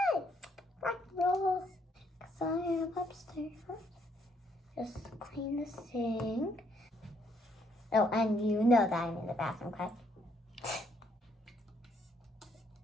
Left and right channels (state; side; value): normal; both; correlation 0.70